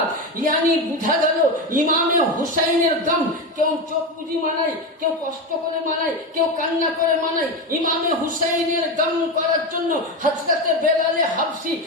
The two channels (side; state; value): both; normal; correlation 0.17